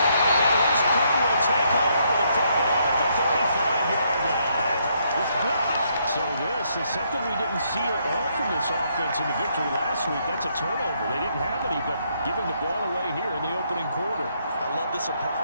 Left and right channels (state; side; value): inverted; both; correlation -0.73